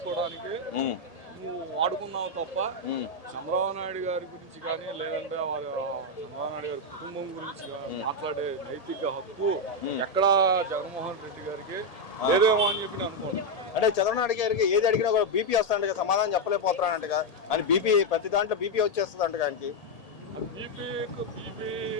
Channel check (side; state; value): right; late; 1.8 ms